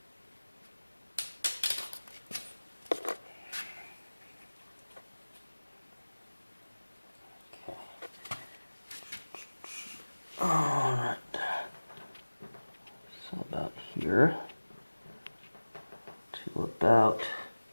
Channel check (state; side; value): inverted; both; correlation -1.00